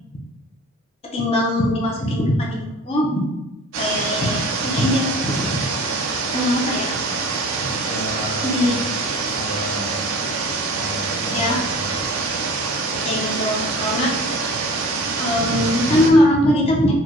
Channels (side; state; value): both; normal; correlation 0.44